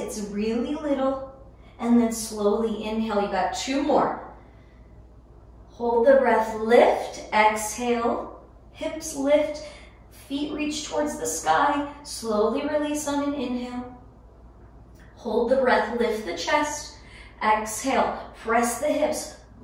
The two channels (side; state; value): both; identical; correlation 1.00